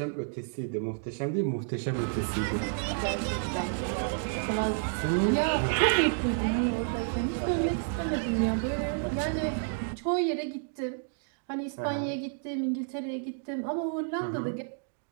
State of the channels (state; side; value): silent; left; digital silence